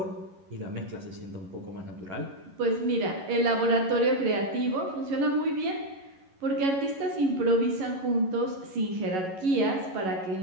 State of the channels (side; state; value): left; late; 11 ms